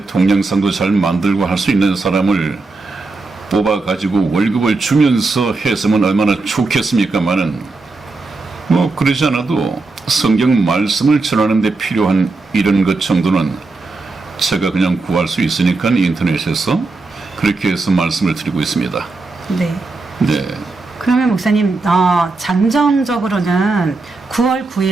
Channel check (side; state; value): left; quieter; 3.6 dB